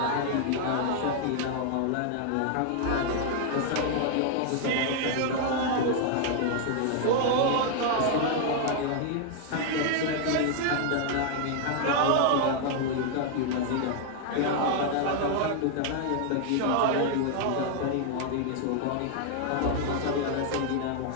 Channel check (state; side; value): different; both; correlation 0.00